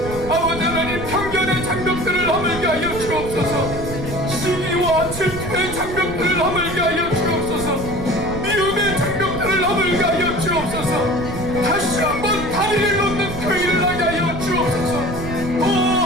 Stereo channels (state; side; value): noise; right; rumble, 9 dB below the sound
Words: 아버지 하나님, 편견의 장벽들을 허물게 하여 주옵소서. 시기와 질투의 장벽들을 허물게 하여 주옵소서. 미움의 장벽들을 허물게 하여 주옵소서. 다시 한번 다리를 놓는 그 일을 하게 하여 주옵소서. 오